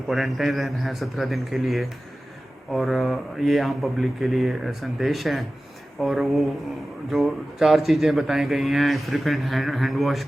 क्वारंटाइन रहना है 17 दिन के लिए। और ये आम पब्लिक के लिए संदेश है। और वो जो 4 चीज़ें बताई गई हैं, फ्रिक्वेंट हैंड वॉश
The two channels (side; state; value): both; normal; correlation 0.96